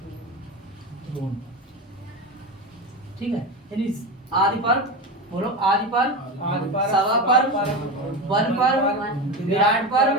द्रोण। ठीक है, यानी आदि पर्व, बोलो आदि पर्व, आदि पर्व, सभा पर्व, वन पर्व, विराट पर्व,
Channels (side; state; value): both; normal; correlation 0.21